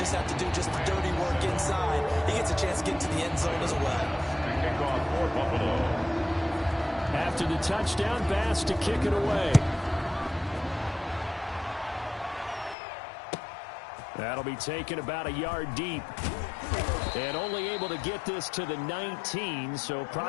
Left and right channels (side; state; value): right; drops out; at 12.8 s